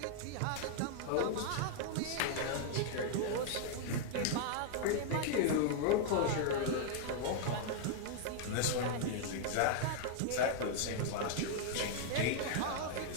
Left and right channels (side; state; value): both; different; correlation 0.00